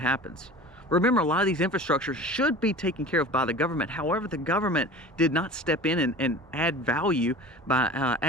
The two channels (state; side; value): normal; both; correlation 0.38